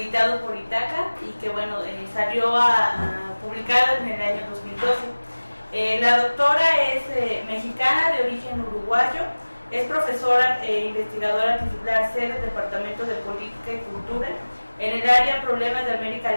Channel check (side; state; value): both; inverted; correlation -1.00